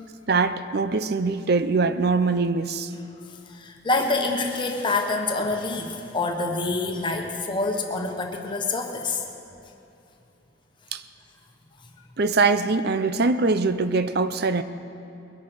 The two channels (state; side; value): normal; both; correlation 0.15